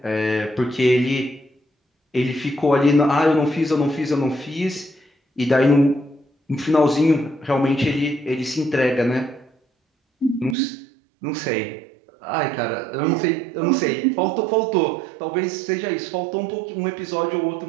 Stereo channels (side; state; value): left; drops out; at 10.6 s